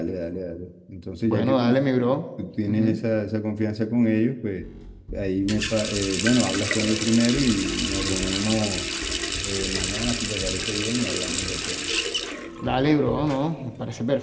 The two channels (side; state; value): both; identical; correlation 1.00